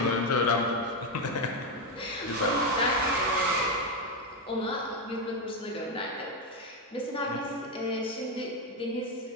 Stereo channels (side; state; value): both; normal; correlation 0.08